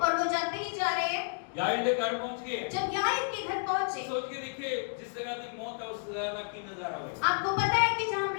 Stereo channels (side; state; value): right; silent; digital silence